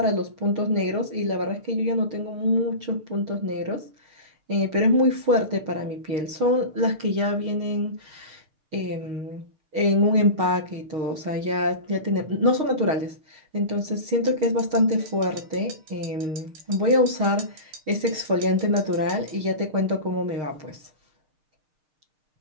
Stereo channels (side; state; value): left; late; 6.4 ms